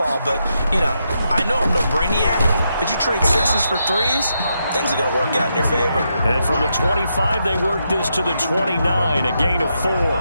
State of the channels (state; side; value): inverted; both; correlation -0.82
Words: But, you know, I know I'm no brainiac, but you trade 6s for 3s, things are going to work out in your favor. And from the 25, they work this to the 29, a gain of 4.